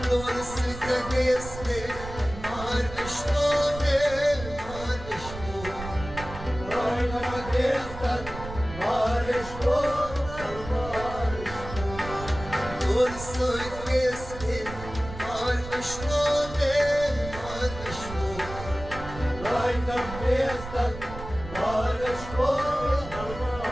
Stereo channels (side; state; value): right; noise; rumble, 11 dB below the sound